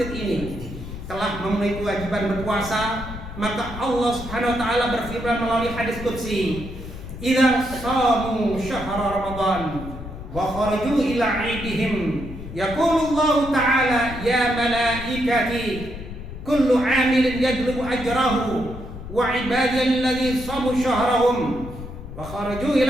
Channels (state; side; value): noise; left; rumble, 11 dB below the sound